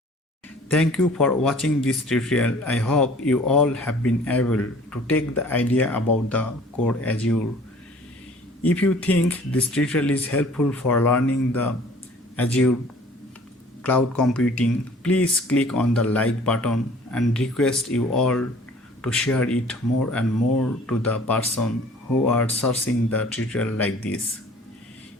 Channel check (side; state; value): both; normal; correlation 0.51